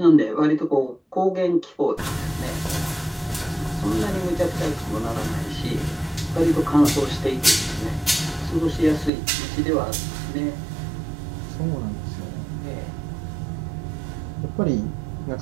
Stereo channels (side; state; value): left; drops out; at 9.1 s